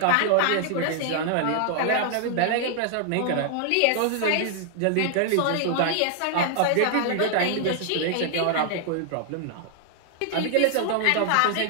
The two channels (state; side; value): different; both; correlation 0.00